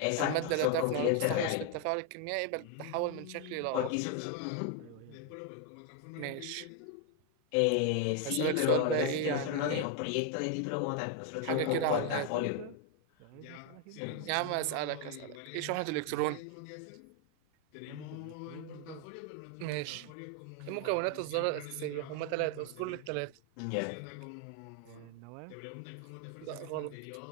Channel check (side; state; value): both; different; correlation 0.01